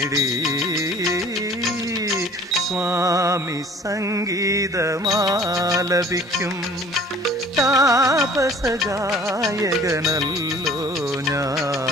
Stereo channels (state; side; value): normal; both; correlation 0.51